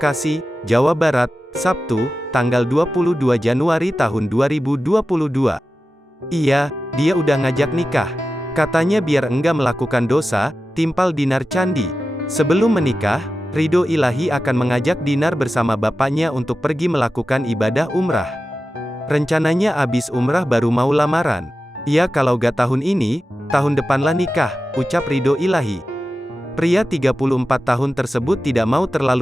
Jawa Barat, Sabtu, tanggal 22 Januari tahun 2022. Iya, dia udah ngajak nikah. Katanya biar enggak melakukan dosa, timpal Dinar Candi. Sebelum menikah, Ridho Ilahi akan mengajak Dinar bersama bapaknya untuk pergi melakukan ibadah umrah. Rencananya abis umrah baru mau lamaran. Ya kalau gak tahun ini, tahun depanlah nikah, ucap Ridho Ilahi. Pria 34 tahun tersebut tidak mau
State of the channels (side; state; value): both; normal; correlation 0.93